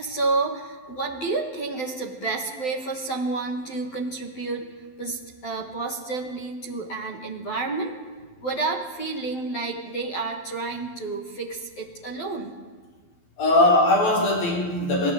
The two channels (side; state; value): right; late; 12 ms